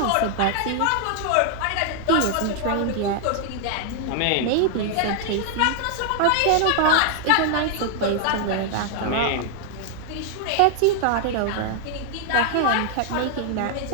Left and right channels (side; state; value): both; different; correlation 0.00